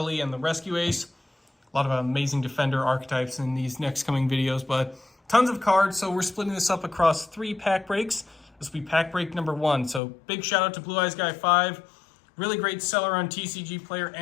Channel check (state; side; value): drops out; right; at 10.0 s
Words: and the Rescue ACE. A lot of amazing Defender archetypes in these next coming videos, but tons of cards, so we're splitting this up across 3 pack breaks. This will be pack break number 1, so big shout out to Blue Eyes Guy 5. Really great seller on TCG Player